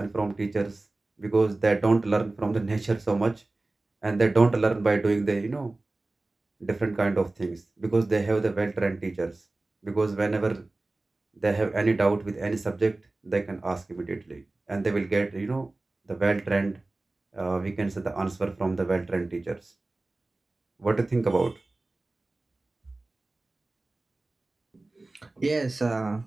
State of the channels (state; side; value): quieter; left; 3.0 dB